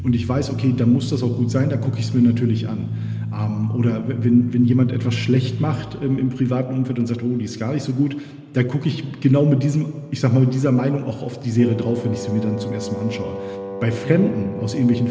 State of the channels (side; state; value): both; identical; correlation 1.00